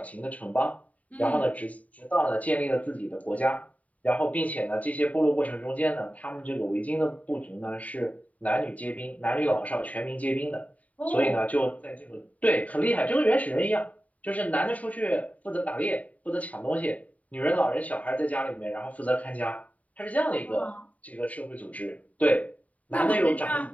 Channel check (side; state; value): right; late; 0.070 ms